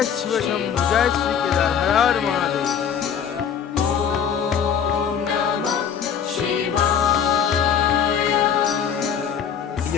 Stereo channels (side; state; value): right; quieter; 7.9 dB